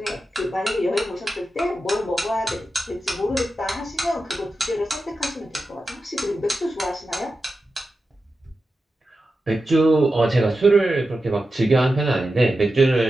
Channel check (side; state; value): both; normal; correlation 0.91